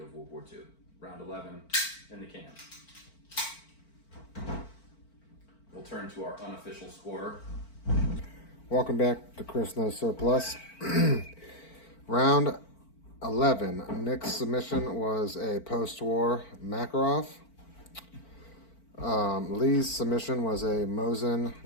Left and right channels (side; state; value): right; late; 4.5 ms